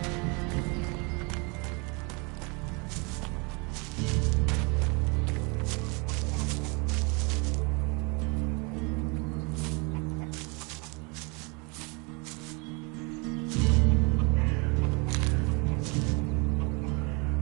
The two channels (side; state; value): left; quieter; 30.8 dB